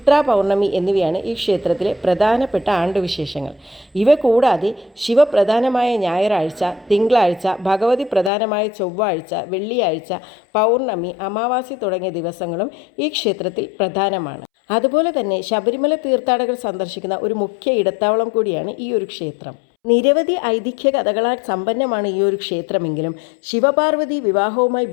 പൗർണമി എന്നിവയാണ് ഈ ക്ഷേത്രത്തിലെ പ്രധാനപ്പെട്ട ആണ്ടുവിശേഷങ്ങൾ. ഇവ കൂടാതെ ശിവപ്രധാനമായ ഞായറാഴ്ച, തിങ്കളാഴ്ച, ഭഗവതി പ്രധാനമായ ചൊവ്വാഴ്ച, വെള്ളിയാഴ്ച, പൗർണമി, അമാവാസി തുടങ്ങിയ ദിവസങ്ങളും ഈ ക്ഷേത്രത്തിൽ പ്രധാനമാണ്. അതുപോലെ തന്നെ ശബരിമല തീർത്ഥാടകർ സന്ദർശിക്കുന്ന ഒരു മുഖ്യ ഇടത്താവളം കൂടിയാണ് ഈ ഒരു ക്ഷേത്രം. നിരവധി ഐതിഹ്യ കഥകളാൽ സമ്പന്നമാണ് ഈ ഒരു ക്ഷേത്രമെങ്കിലും ശിവപാർവതി വിവാഹവുമായി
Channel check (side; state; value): right; drops out; at 8.3 s